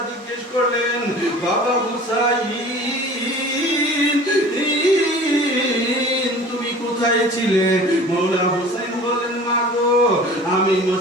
জিজ্ঞেস করলেন, বাবা হুসাইন তুমি কোথায় ছিলে? মওলা হুসাইন বলেন, মা গো আমি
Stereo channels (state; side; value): normal; both; correlation 0.43